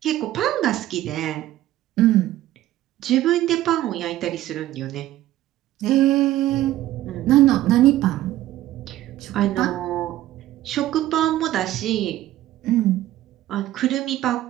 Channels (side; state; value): left; quieter; 14.4 dB